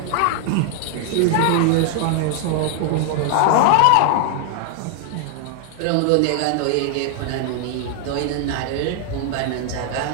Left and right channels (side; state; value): both; different; correlation 0.00